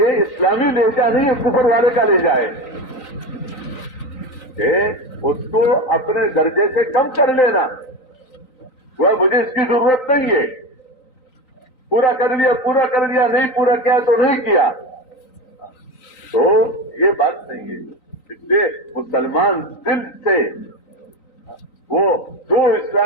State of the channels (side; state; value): right; late; 3.9 ms